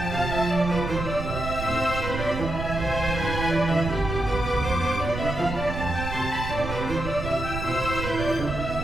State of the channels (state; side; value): noise; right; rumble, 6 dB below the sound